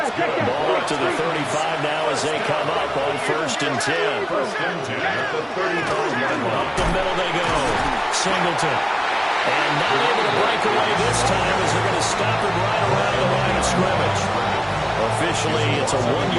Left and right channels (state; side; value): identical; both; correlation 1.00